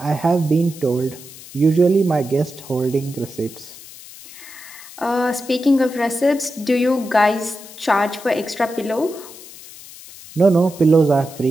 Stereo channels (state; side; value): noise; left; hiss, 17 dB below the sound